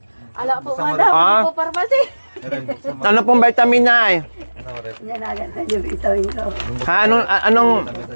Ala po nga daw. Hindi po pharmacy. Ano pong vitamin, Nay? Yan agad na yung vitamin ko. Ha? Anong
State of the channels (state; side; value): inverted; both; correlation -1.00